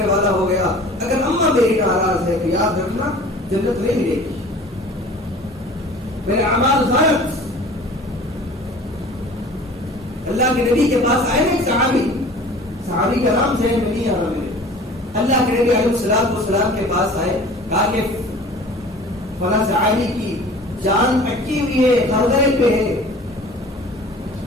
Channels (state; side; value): normal; both; correlation 0.44